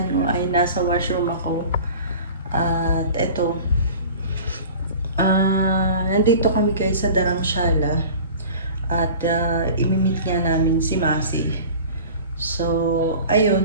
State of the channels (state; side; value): inverted; both; correlation -0.40